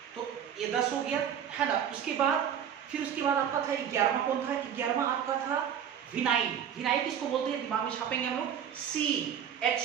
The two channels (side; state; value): left; quieter; 8.8 dB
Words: तो ये 10 हो गया है ना। उसके बाद फिर उसके बाद आपका था 11वां, कौन था 11वां, आपका था विनाइल। विनाइल किसको बोलते हैं, दिमाग में छापेंगे हम लोग,